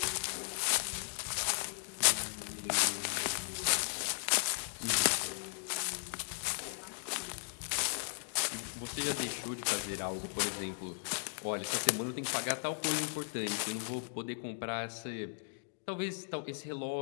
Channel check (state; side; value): silent; right; digital silence